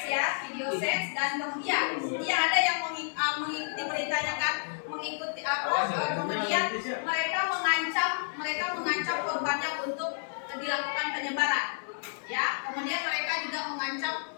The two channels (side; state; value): right; silent; 58 dB below the other